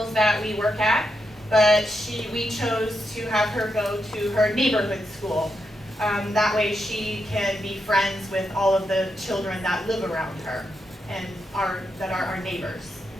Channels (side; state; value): both; normal; correlation 0.84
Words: that we work at, but we chose to have her go to her neighborhood school. That way she can be friends with all of the children that live around her and that are our neighbors.